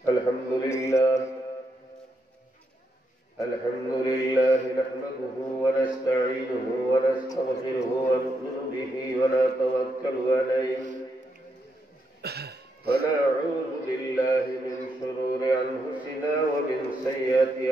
Alhamdulillah nahmaduhu wa nasta'inuhu wa nastaghfiruhu wa nu'minu bihi wa natawakkalu alayhi wa na'udzu billahi min shururi anfusina wa min sayyiati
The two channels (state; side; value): normal; both; correlation 0.80